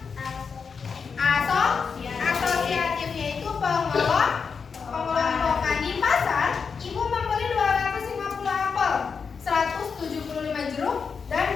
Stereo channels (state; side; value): quieter; right; 5.7 dB